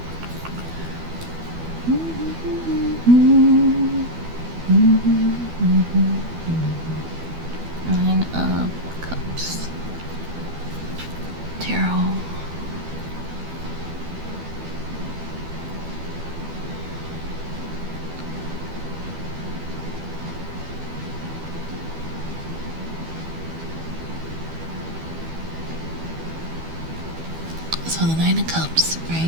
Nine of Cups. Tarot. So the Nine of Cups,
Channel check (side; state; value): left; late; 12 ms